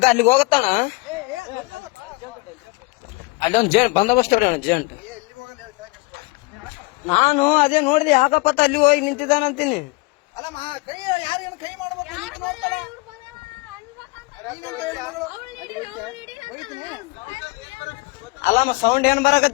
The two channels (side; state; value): right; quieter; 25.5 dB